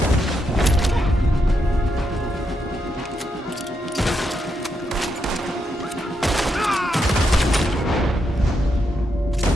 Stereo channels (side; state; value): both; normal; correlation 0.82